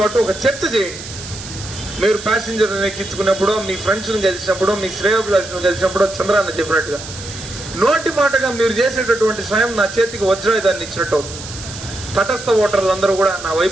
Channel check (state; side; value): noise; right; hiss, 12 dB below the sound